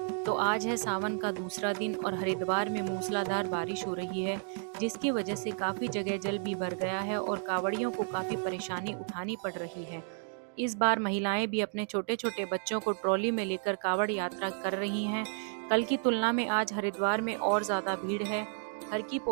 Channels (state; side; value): silent; left; 56 dB below the other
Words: तो आज है सावन का दूसरा दिन और हरिद्वार में मूसलाधार बारिश हो रही है, जिसकी वजह से काफी जगह जल भी भर गया है और कांवड़ियों को काफी परेशानी उठानी पड़ रही है। इस बार महिलाएं भी अपने छोटे छोटे बच्चों को ट्रॉली में लेकर कांवड़ यात्रा कर रही हैं। कल की तुलना में आज हरिद्वार में और ज्यादा भीड़ है। हर की